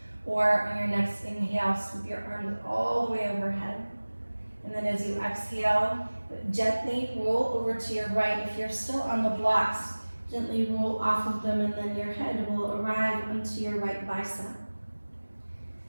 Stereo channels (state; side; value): inverted; both; correlation -1.00